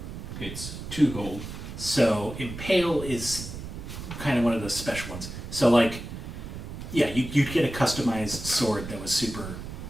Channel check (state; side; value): noise; right; rumble, 9 dB below the sound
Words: it's 2 gold. So impale is kind of one of those special ones. So like, yeah, you'd get a customized sword that was super